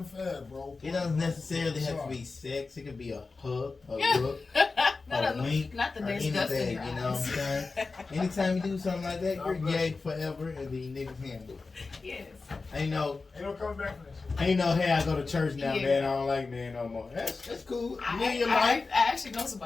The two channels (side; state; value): right; quieter; 4.0 dB